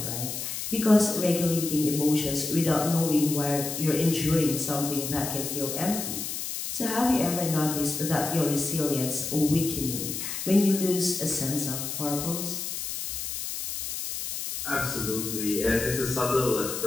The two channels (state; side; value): noise; left; hiss, 5 dB below the sound